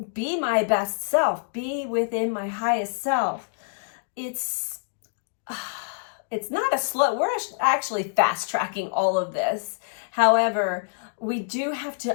be my best self, be within my highest self. It's not a slow, we're actually fast tracking all of this. However, we do have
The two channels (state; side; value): silent; right; digital silence